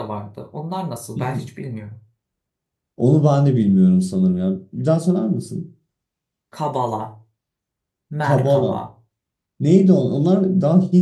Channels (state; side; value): identical; both; correlation 1.00